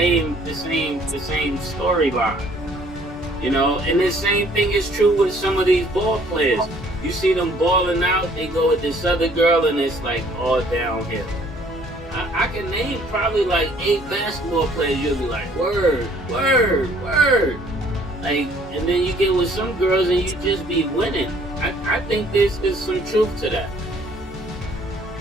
storyline. You know, and the same thing is true with some of these ball players. You see them balling out, they go with this other girl and it's like all downhill. I can name probably like 8 basketball players, you'll be like, word. Like, and then you get with some girls and you just be winning. I think there's some truth to that.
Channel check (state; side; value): normal; both; correlation 0.59